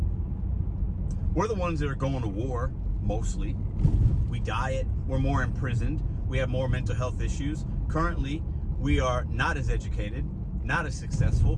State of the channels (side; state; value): both; identical; correlation 1.00